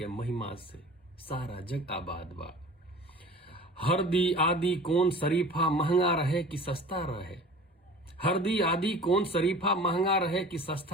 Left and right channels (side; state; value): both; normal; correlation 0.42